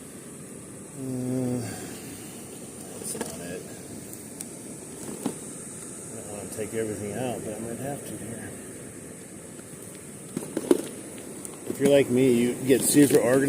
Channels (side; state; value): both; identical; correlation 1.00